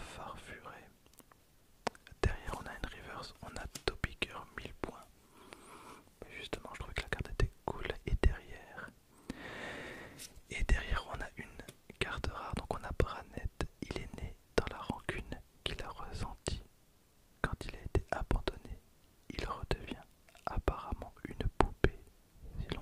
Farfuret. Derrière on a une reverse, on a Topiger 1000 points. Justement je trouvais que la carte était cool. Et derrière on a une carte rare, donc on a Branette. Il est né dans la rancune qu'il a ressentie quand il a été abandonné. Il redevient apparemment une poupée si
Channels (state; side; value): identical; both; correlation 1.00